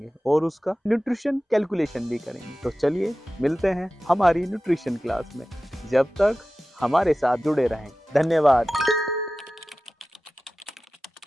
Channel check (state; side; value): normal; both; correlation 0.95